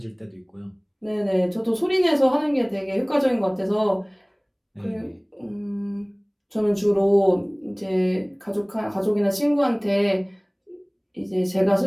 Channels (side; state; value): both; identical; correlation 1.00